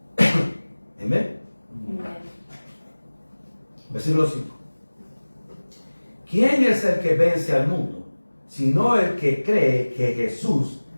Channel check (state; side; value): inverted; both; correlation -1.00